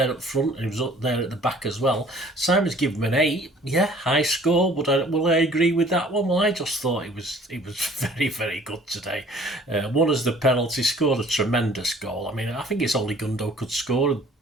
up front and he was up there at the back as well. Simon's given him an 8. Yeah, high score, but will I agree with that one? Well, I just thought he was very, very good today. Won as the penalty, scored a tremendous goal. I mean, I think it's only Gundo could score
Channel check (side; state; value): both; normal; correlation 0.53